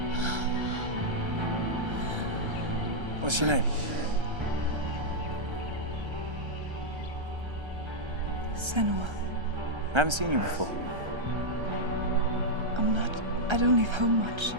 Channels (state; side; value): late; left; 1.3 ms